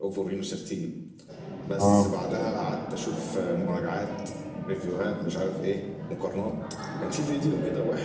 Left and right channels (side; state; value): both; identical; correlation 1.00